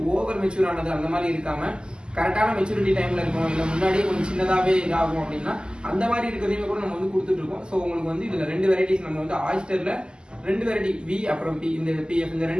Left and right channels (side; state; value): left; late; 0.047 ms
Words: ஓவர் மெச்சூர் ஆனது அந்த மாதிரி இருக்காம கரெக்டான மெச்சூரிட்டி டைம்ல இருக்கும், இல்லை முன்னாடியே கொஞ்சம் சின்னதாவே இதாகும் அப்படின்னா அந்த மாதிரி இருக்கிறதையுமே கூட நம்ம வந்து கொடுத்துட்டு இருக்கோம். ஸோ உங்களுக்கு வந்து இதுல 2 வெரைட்டிஸ் நம்ம வந்து ஆயிஸ்டர்ல 2 வெரைட்டி வி அப்புறம் பி, இந்த பிஎஃப், இந்த